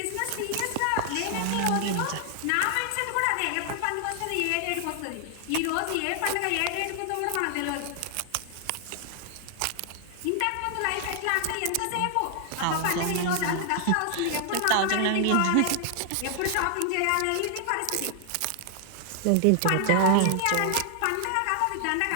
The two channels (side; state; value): both; different; correlation 0.00